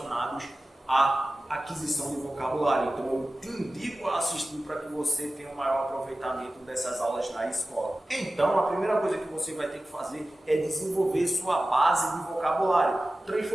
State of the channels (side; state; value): both; normal; correlation 0.96